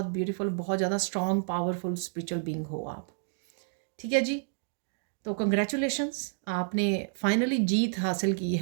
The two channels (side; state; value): left; silent; digital silence